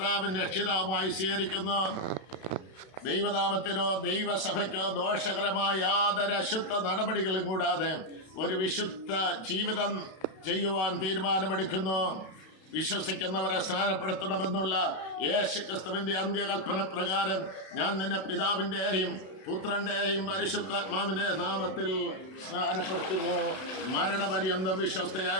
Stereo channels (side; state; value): right; late; 31 ms